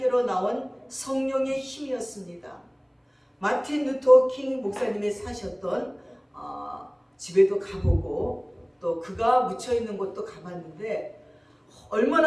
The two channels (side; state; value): both; identical; correlation 1.00